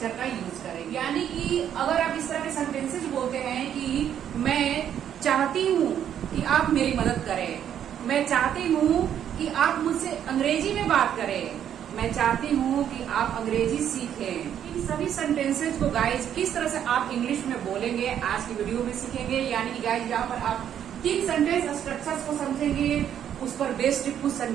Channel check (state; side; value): quieter; left; 9.7 dB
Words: का यूज करेंगे। यानी कि अगर आप इस तरह के सेंटेंसेज बोलते हैं कि मैं चाहती हूँ कि आप मेरी मदद करें, मैं चाहती हूँ कि आप मुझसे अंग्रेजी में बात करें, मैं चाहती हूँ कि आप अंग्रेजी सीखें। इन सभी सेंटेंसेज को गाइज किस तरह से आप इंग्लिश में बोलेंगे आज की वीडियो में सीखेंगे। यानी कि गाइज यहाँ पर आप 3 सेंटेंस स्ट्रक्चर्स को समझेंगे, उस पर बेस्ड कुछ